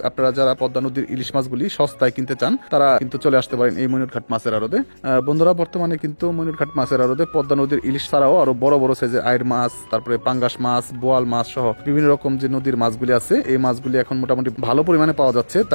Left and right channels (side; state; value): both; inverted; correlation -1.00